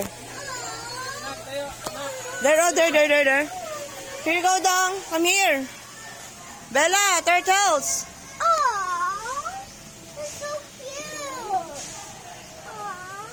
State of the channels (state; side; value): identical; both; correlation 1.00